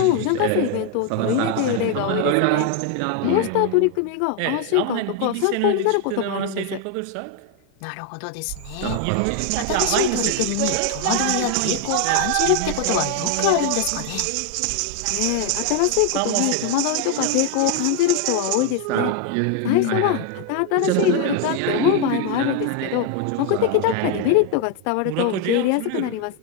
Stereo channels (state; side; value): different; both; correlation 0.01